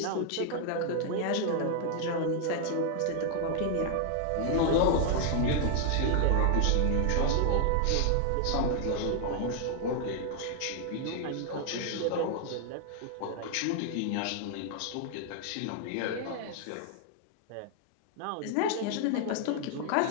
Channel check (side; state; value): both; different; correlation 0.00